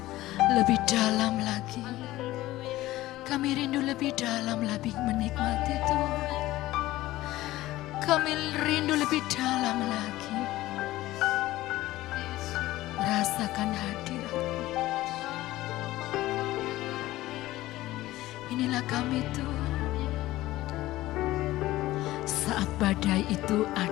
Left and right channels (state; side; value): quieter; right; 16.7 dB